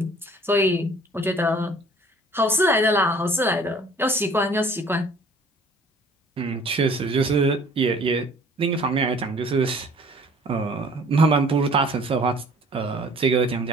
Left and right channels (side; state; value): both; normal; correlation 0.53